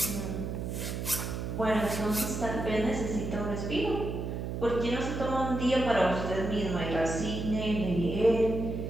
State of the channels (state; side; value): noise; right; hum, 4 dB below the sound